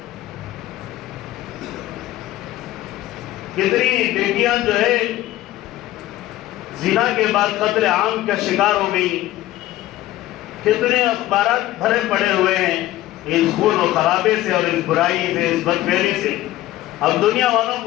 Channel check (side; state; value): right; quieter; 15.5 dB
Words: کتنی بیٹیاں جو ہے زنا کے بعد قتل عام کا شکار ہو گئی، کتنے اخبارات بھرے پڑے ہوئے ہیں اس خون و خرابے سے اور اس برائی سے، اس بدفعلی سے. اب دنیا والوں